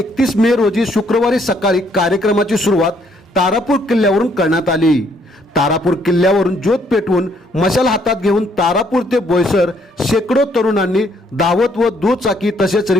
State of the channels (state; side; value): normal; both; correlation 0.68